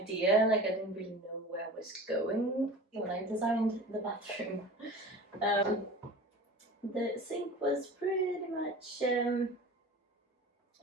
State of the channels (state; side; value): normal; both; correlation 0.37